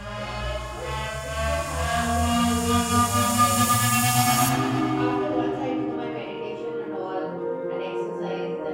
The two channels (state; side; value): identical; both; correlation 1.00